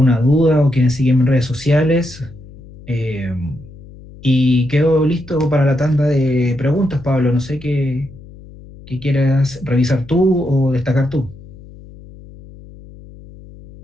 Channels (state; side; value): noise; left; hum, 19 dB below the sound